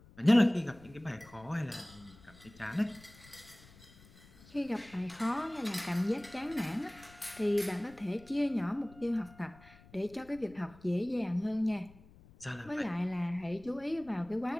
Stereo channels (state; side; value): noise; left; rumble, 23 dB below the sound